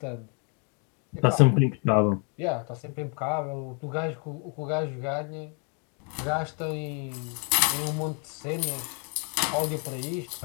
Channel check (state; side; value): quieter; right; 37.6 dB